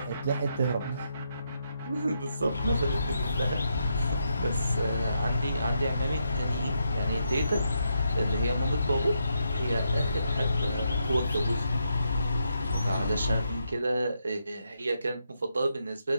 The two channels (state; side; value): inverted; both; correlation -0.81